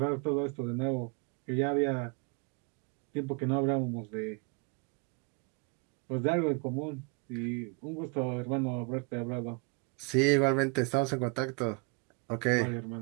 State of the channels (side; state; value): left; quieter; 32.3 dB